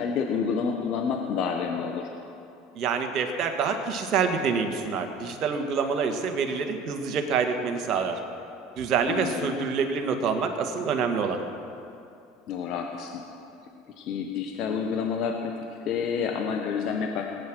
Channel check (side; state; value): both; normal; correlation 0.42